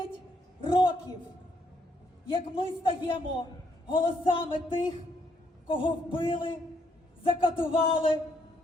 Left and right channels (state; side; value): normal; both; correlation 0.73